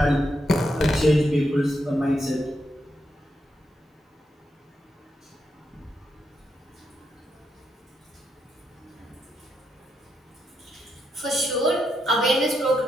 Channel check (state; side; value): normal; both; correlation 0.82